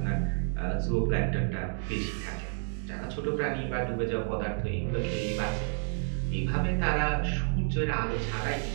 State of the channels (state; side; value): silent; left; 58 dB below the other